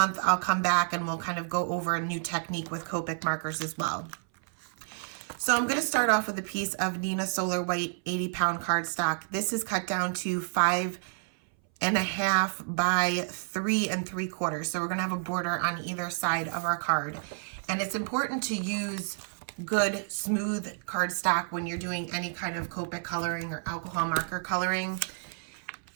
I'll come back and we'll kind of go over a new technique with Copic markers as well. So I'm going to start off with a piece of Nina Solar White 80-pound cardstock. This is cut down to 5.5 by 3 3/4. So we're going to have a border on either side of our card. And it's important to use good, smooth cardstock when you're doing any kind of Copic coloring or alcohol marker coloring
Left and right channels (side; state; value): left; silent; 58 dB below the other